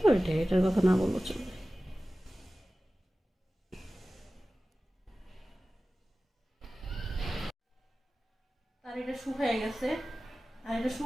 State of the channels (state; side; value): normal; both; correlation 0.96